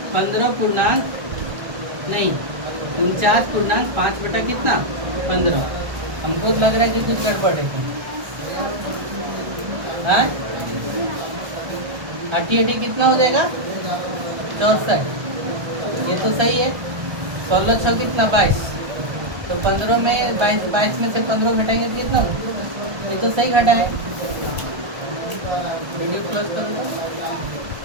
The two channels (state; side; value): late; left; 1.4 ms